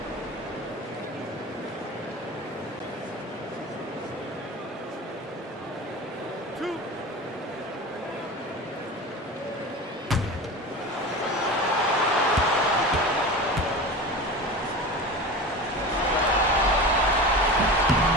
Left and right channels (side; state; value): both; normal; correlation 0.31